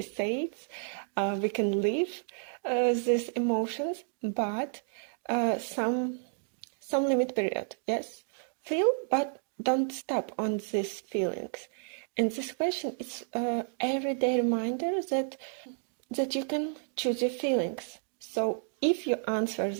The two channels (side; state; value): left; silent; 57 dB below the other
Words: says, we can live these emotions, but some limit period. Yes, feel, but don't stop on these feelings. And this question is everyday reminder that you can choose your feelings. So if you answer